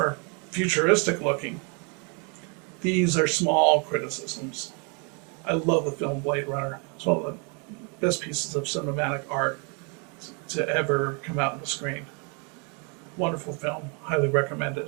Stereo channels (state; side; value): quieter; left; 35.5 dB